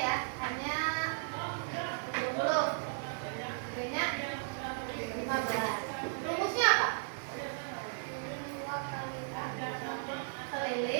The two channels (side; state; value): left; silent; digital silence